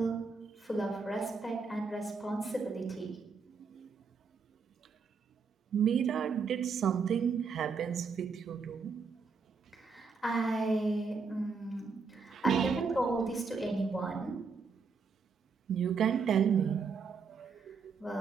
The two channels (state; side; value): quieter; left; 5.1 dB